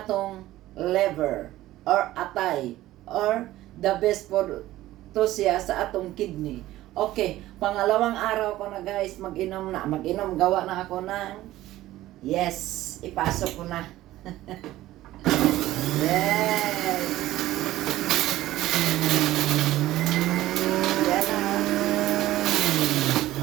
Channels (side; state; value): left; quieter; 15.5 dB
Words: liver or atay or the best for to siya sa atong kidney. Okay, pangalawang araw ko na guys, mag-inom, gawa na ako ng yes, ipasok ko na. Yes. Yan na.